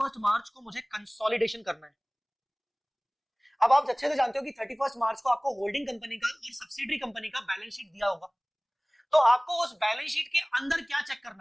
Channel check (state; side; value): identical; both; correlation 1.00